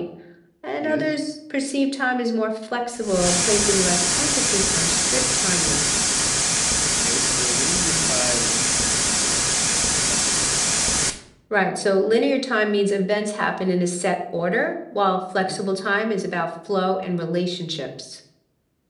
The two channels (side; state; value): both; identical; correlation 1.00